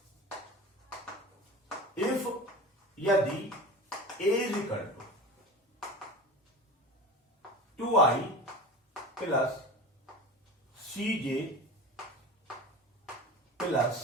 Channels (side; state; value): both; normal; correlation 0.32